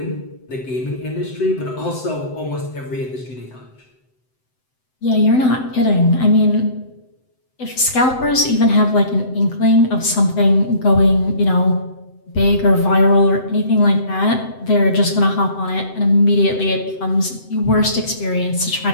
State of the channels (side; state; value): right; late; 7.8 ms